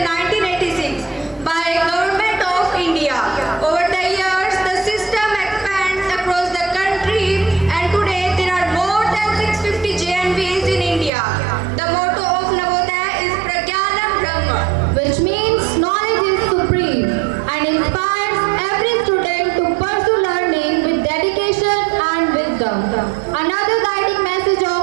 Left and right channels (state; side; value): drops out; left; at 11.1 s